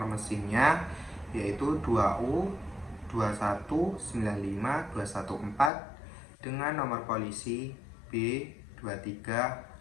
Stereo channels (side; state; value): right; drops out; at 5.7 s